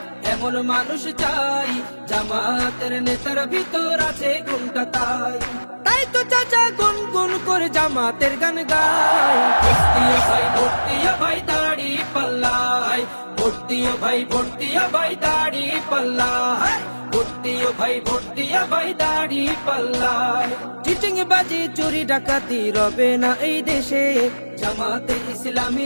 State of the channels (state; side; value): inverted; both; correlation -1.00